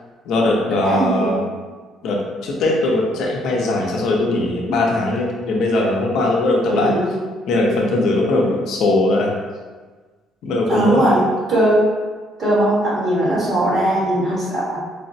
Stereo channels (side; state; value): both; normal; correlation 0.68